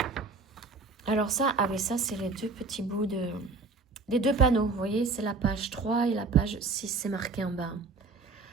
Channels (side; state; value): left; quieter; 3.8 dB